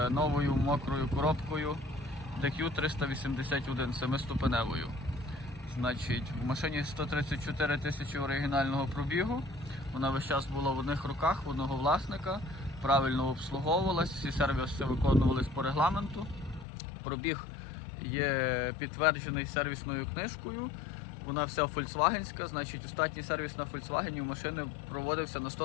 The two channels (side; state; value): right; drops out; at 16.7 s